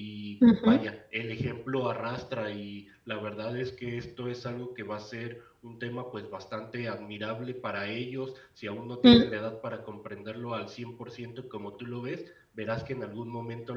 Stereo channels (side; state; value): both; identical; correlation 1.00